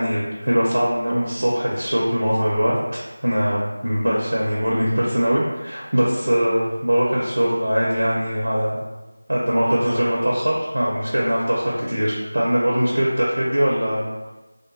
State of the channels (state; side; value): inverted; both; correlation -0.99